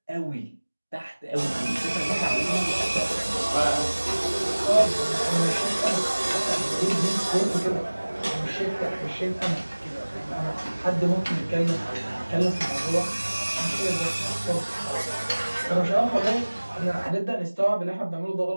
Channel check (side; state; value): both; inverted; correlation -1.00